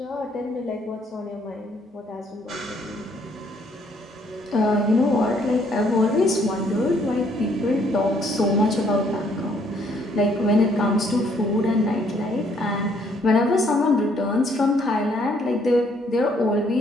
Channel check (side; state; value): both; normal; correlation 0.66